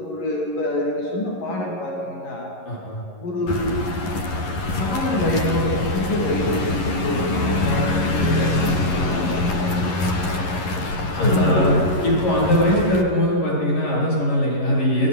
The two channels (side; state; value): right; late; 11 ms